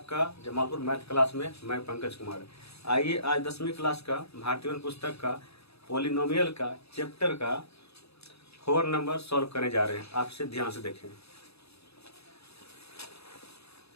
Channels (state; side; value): late; right; 0.78 ms